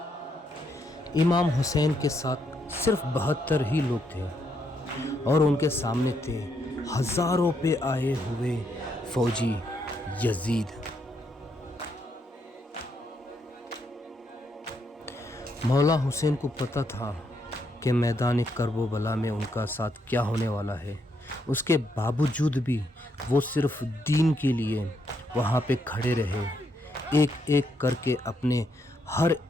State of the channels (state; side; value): normal; both; correlation 0.77